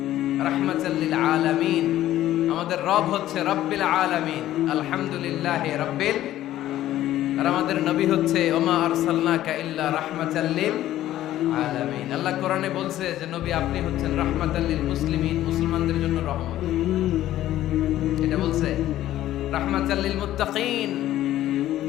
রাহমাতাল লিল আলামিন। আমাদের রব হচ্ছে রব্বিল আলামিন, আলহামদুলিল্লাহি রাব্বিল। আর আমাদের নবী হচ্ছে ওমা আরসালনাকা ইল্লা রাহমাতাল লিল আলামিন। আল্লাহ কোরআনে বলছে যে নবী আপনি হচ্ছেন রাহমাতাল লিল মুসলিমিন, মুসলমানদের জন্য রহমত। এটা বলছে রাহমাতাল লিল মুত্তাকিন।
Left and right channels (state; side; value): quieter; right; 13.6 dB